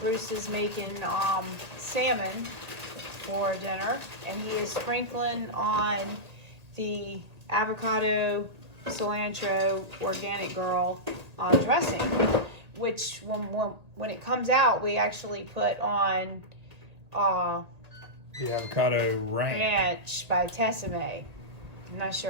Bruce is making salmon for dinner, and he is sprinkling on the avocado cilantro organic girl dressing, which when it comes out, we actually put on the avocado ranch by Tessime. I'm not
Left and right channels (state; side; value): late; left; 1.8 ms